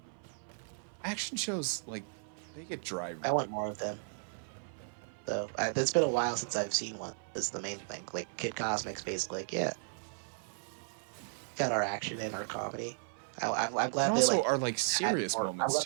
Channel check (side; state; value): left; silent; 54 dB below the other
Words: Action shows, like, they get dry. I want more of them. So it's been a while since I've seen one. Is the main thing. Like Kid Cosmic's basically like, yeah, got our action and our comedy. I'm And glad they also like are, like, had serious more. I'm moments, glad